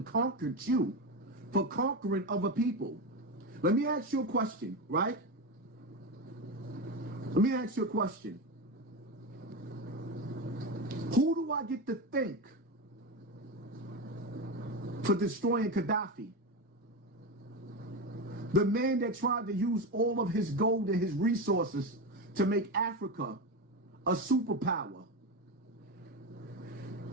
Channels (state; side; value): normal; both; correlation 0.17